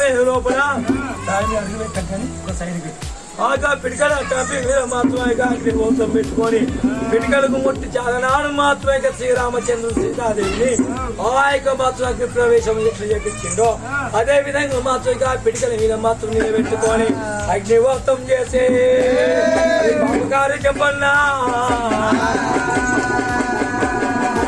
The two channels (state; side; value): identical; both; correlation 1.00